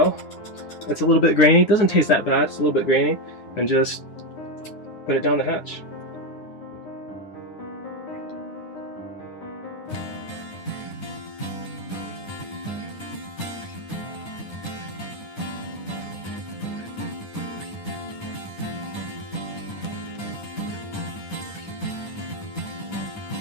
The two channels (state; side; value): late; right; 9.8 ms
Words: It's a little bit grainy. It doesn't taste that bad. It's a little bit grainy. And just put it down the hatch.